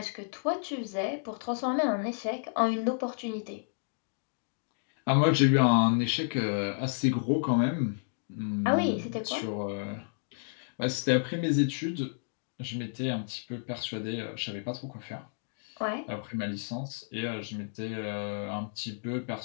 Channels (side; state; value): right; silent; digital silence